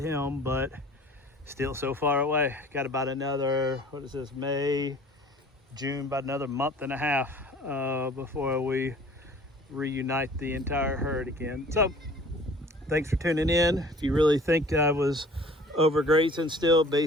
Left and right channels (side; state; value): both; normal; correlation 0.48